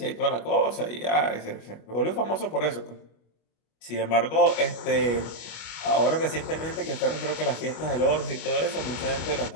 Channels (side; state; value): right; late; 25 ms